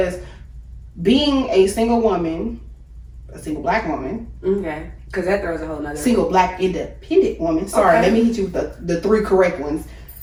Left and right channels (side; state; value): both; identical; correlation 1.00